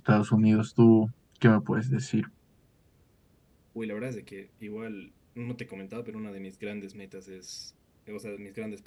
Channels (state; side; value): identical; both; correlation 1.00